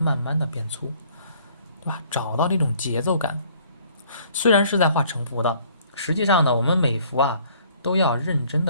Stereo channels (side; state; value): both; inverted; correlation -0.58